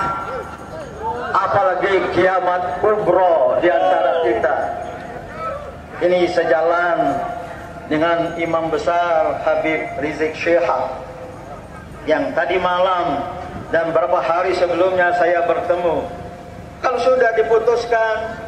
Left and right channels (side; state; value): both; identical; correlation 1.00